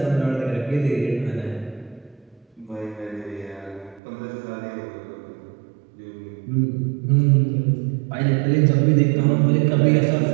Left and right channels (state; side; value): drops out; left; at 4.0 s